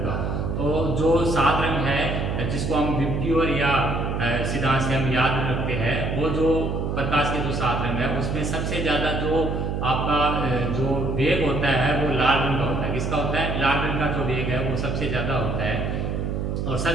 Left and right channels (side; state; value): right; noise; hum, 1 dB below the sound